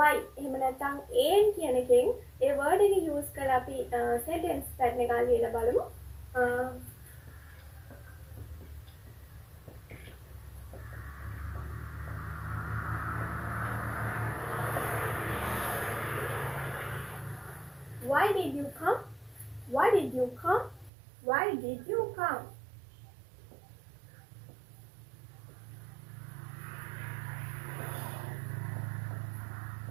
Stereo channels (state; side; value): drops out; left; at 20.9 s